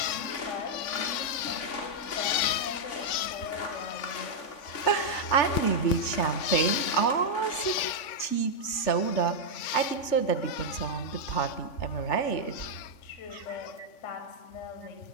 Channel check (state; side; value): late; right; 3.5 ms